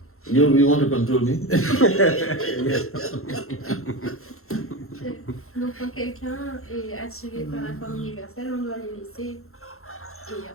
You want to control me? Donc quand quelqu'un est attiré par la forme universelle, on doit les laisser. Et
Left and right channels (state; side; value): late; right; 0.62 ms